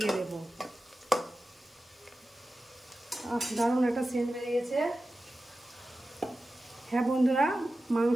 দেব। দারুণ একটা সেন্ট বেরিয়েছে। হ্যাঁ বন্ধুরা,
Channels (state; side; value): normal; both; correlation 0.94